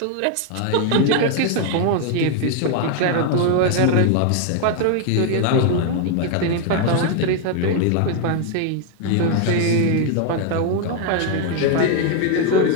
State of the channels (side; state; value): both; different; correlation 0.01